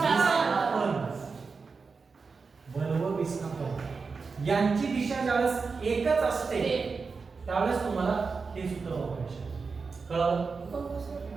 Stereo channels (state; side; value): quieter; left; 4.8 dB